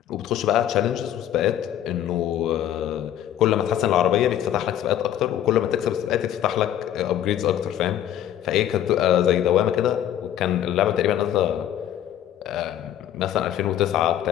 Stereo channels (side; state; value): right; quieter; 11.2 dB